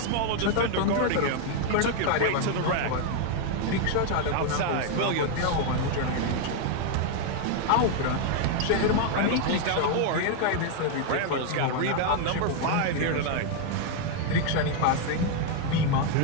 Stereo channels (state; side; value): different; both; correlation 0.00